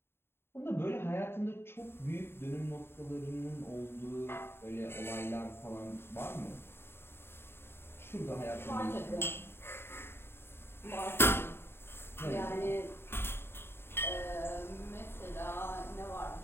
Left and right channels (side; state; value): right; late; 0.11 ms